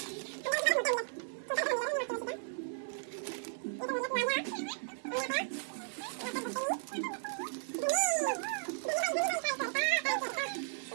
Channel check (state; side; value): silent; left; digital silence